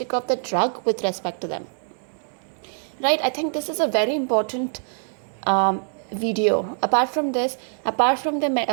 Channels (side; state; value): left; silent; digital silence